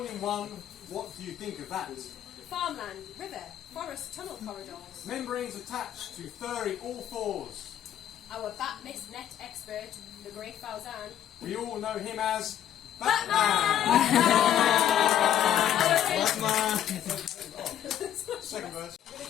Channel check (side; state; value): right; quieter; 10.7 dB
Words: in one, what do you think of that? Farmland, river, forest tunnel corridors. Membranes attached to furry all fours. Our bat mist net expert, the great Fauzan. We all know him as Second verse.